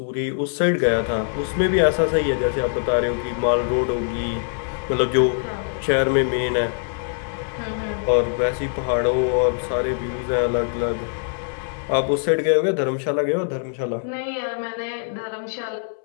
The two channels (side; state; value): right; silent; 64 dB below the other